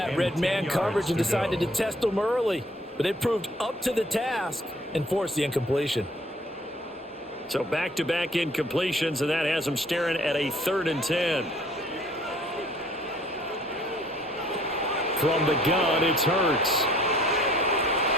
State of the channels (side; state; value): both; normal; correlation 0.57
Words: Red man coverage and decided to test them early. But they proved up to the task and forced the incompletion. So back-to-back incompletions, and that has them staring at a 3rd and 10. From the gun, it's Hurts.